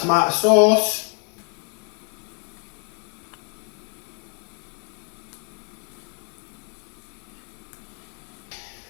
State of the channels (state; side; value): quieter; right; 40.0 dB